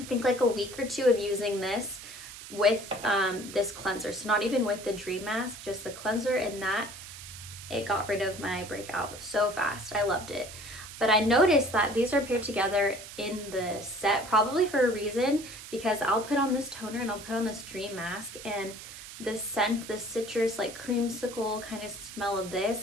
think like a week or two of using this with this cleanser, so not even with the Dream Mask, just the cleanser, and that it got rid of my breakout so fast. I loved it. But I noticed that these are paired together in the set, probably for a reason, because I'll put on this toner and I'll put on this Dream Mask, and the scent, the citrus, like creamsicle kind of smell of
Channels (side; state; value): right; noise; hiss, 13 dB below the sound